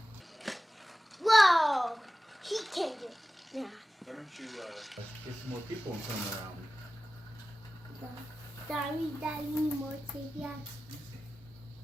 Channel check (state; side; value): normal; both; correlation 0.95